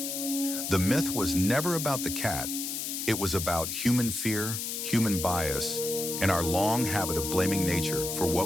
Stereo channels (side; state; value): left; noise; hiss, 4 dB below the sound